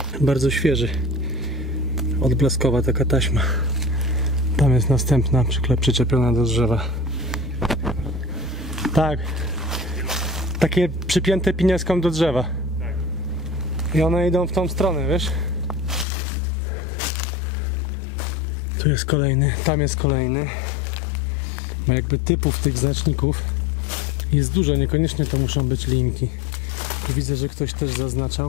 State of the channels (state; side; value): drops out; right; at 16.1 s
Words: Bardzo świeży. Odblaskowa taka taśma. Tam jest następna przyczepiona do drzewa. Tak. Takie przypięte pinieską do drzewa. I one idą w tą stronę, wiesz? Tu jest kolejny, tam jest kolejny. Ma jakby typów tych znaczników jest dużo, niekoniecznie to muszą być linki. Tu widzę, że ktoś też